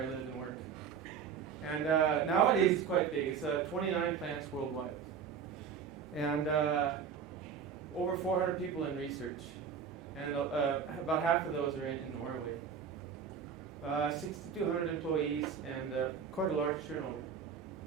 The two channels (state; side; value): quieter; left; 6.8 dB